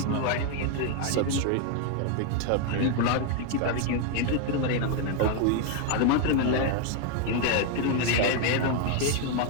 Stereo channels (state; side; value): different; both; correlation 0.01